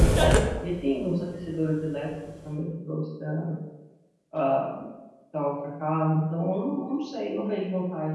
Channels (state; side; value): identical; both; correlation 1.00